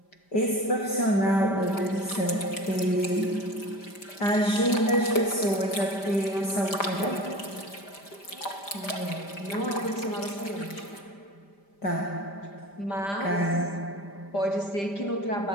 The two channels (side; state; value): right; late; 5.0 ms